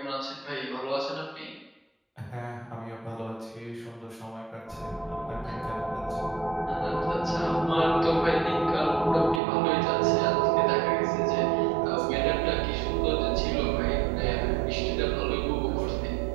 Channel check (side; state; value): left; drops out; at 9.4 s